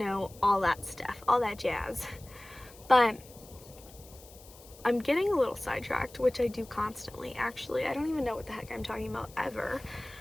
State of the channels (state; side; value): noise; left; hiss, 21 dB below the sound